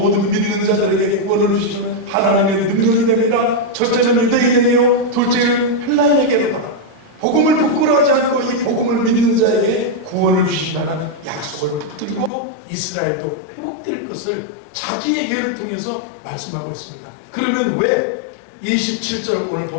믿는 자들에게 구원을 주시는 하나님의 능력이 됩니다. 첫째는 유대인에게요, 둘째는 헬라인에게로 받아. 복음을 부끄러워하지 않고 이 복음을 믿는 자에게 구원을 주신다는 약속을 붙들고 이스라엘도 회복될 것을 자기의 예를 통해서 말씀하고 있습니다. 그러면 왜 27절 오늘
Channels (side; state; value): right; drops out; at 12.3 s